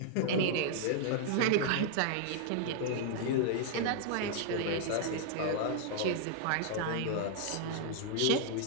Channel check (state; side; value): different; both; correlation 0.00